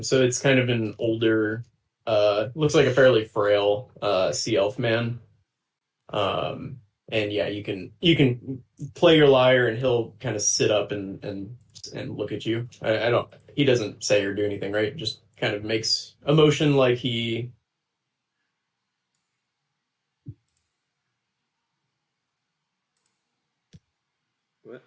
So it's kind of an older, looks like a fairly frail sea elf man. And yeah, you can play your lyre, and he'll kind of sit up and look at you. He doesn't say or do anything, right? Just kind of makes a motion like he... What?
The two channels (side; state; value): both; identical; correlation 1.00